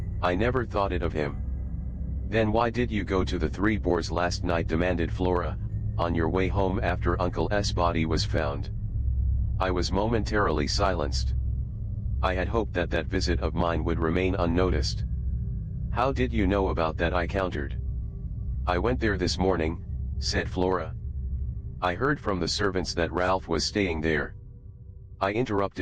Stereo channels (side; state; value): both; identical; correlation 1.00